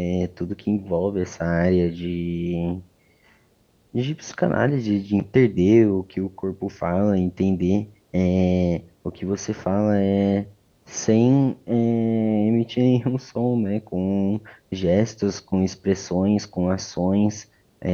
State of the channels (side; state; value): both; identical; correlation 1.00